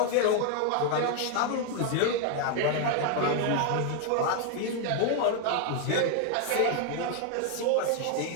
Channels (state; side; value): different; both; correlation 0.00